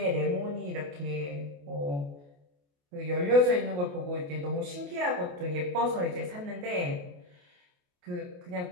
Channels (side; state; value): left; late; 28 ms